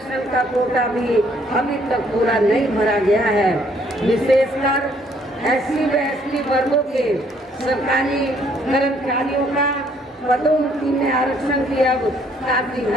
का कोटा भी अभी तक पूरा नहीं भरा गया है। विशेषकर एससी व एसटी वर्गों के सरकारी कर्मचारियों का पदोन्नति में आरक्षण की अब काफी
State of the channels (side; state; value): both; normal; correlation 0.65